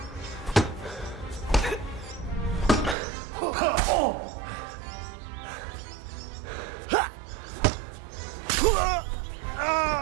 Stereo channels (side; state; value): left; drops out; at 3.0 s